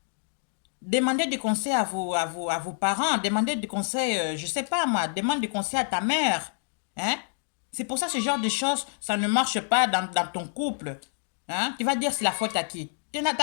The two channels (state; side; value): silent; right; digital silence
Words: Demandez des conseils à vos parents. Demandez des conseils, je sais pas moi. Demande des conseils à ta mère. Hein? C'est pour ça que ce genre de choses, ça ne marche pas dans ton couple. Hein? Tu vas dire c'est la faute à qui? Tu n'as